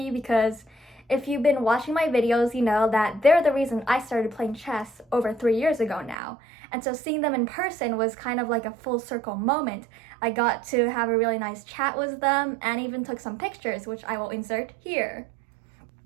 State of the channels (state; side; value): drops out; left; at 6.2 s